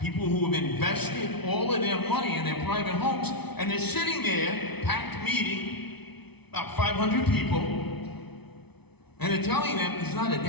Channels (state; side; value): late; right; 0.99 ms